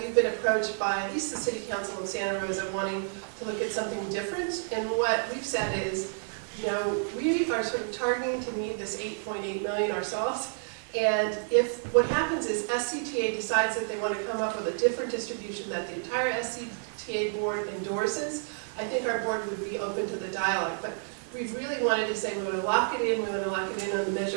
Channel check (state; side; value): silent; left; digital silence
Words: been approached by at least the City Council of Santa Rosa wanting to look at something different. And what we've said is, you know, we are sort of targeting to need this 8.8 million ourselves. And if what happens is SCTA decides that they want to come up with a different distribution that the entire SCTA board endorses, I think our board would be open to the dialogue. But we really wanted to say we want to lock it in, we want to lock it in on the